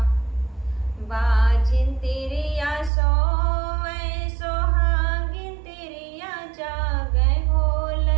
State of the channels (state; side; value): drops out; left; at 2.9 s